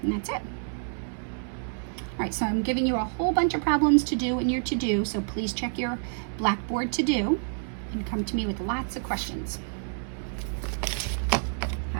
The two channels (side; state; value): left; silent; 59 dB below the other